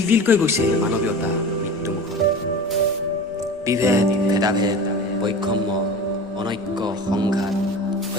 তিলকৈ গৈছে মানৱীয়তা মৃত্যুমুখত। বিভেদ, ভেদাভেদ, বৈষম্য, অনৈক্য, সংঘাত,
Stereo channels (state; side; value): normal; both; correlation 0.34